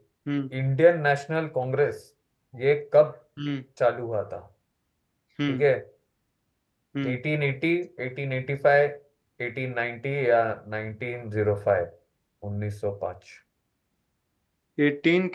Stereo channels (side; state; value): both; identical; correlation 1.00